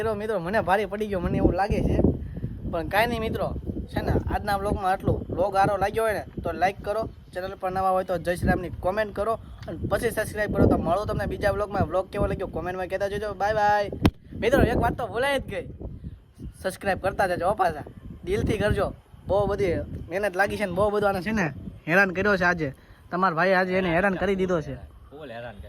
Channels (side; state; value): both; identical; correlation 1.00